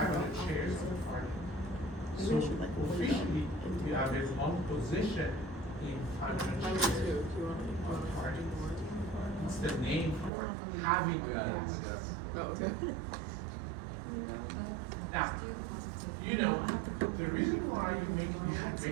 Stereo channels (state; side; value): drops out; left; at 10.3 s